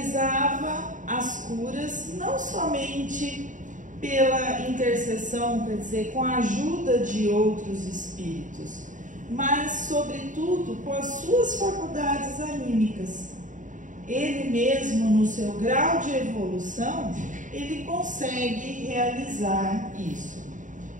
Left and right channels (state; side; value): late; left; 0.37 ms